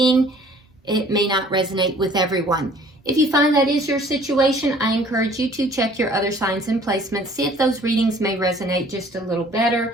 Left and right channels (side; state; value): both; normal; correlation 0.54